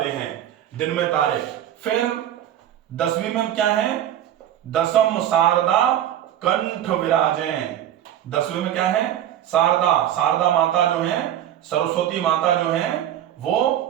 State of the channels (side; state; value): left; quieter; 11.4 dB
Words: हैं, दिन में तारे। फिर 10वीं में क्या है, दशम शारदा कंठ विराजे। 10वीं में क्या है, शारदा, शारदा माता जो है, सरस्वती माता जो है वो